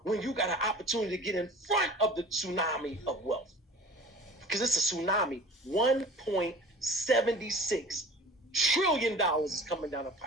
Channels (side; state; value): both; normal; correlation 0.42